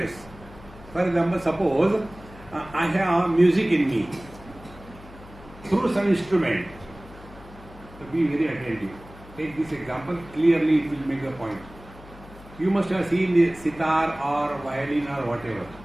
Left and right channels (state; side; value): noise; left; hum, 20 dB below the sound